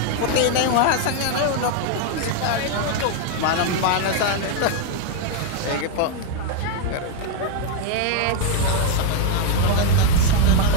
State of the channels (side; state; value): both; different; correlation 0.01